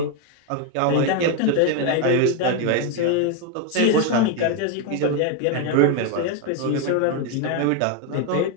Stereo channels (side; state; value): both; different; correlation 0.01